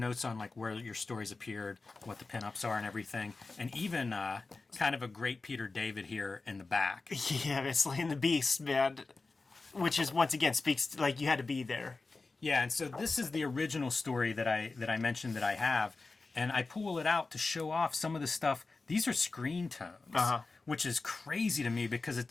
on like where your stories appeared, what the pinups are and everything, and even kind of a great Peter David here in the back. Yeah, it's slaying the beast, man. Which is, once again, speaks to, like, you had to be there. Yeah, and so this is the original story that I mentioned that I have, and I pull it out to show off some of the stuff. These are screen tones, which is crazy to me because it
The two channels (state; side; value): quieter; right; 3.8 dB